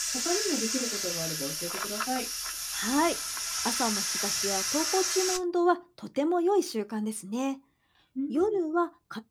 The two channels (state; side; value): identical; both; correlation 1.00